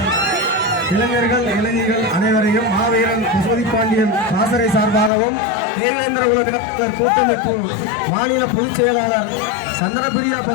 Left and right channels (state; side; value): drops out; right; at 5.1 s